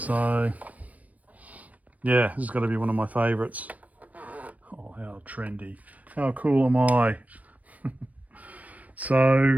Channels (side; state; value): left; late; 0.071 ms